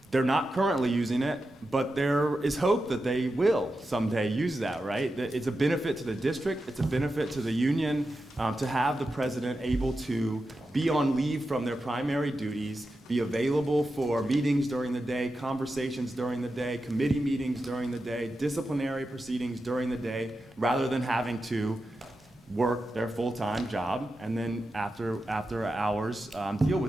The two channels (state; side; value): normal; both; correlation 0.90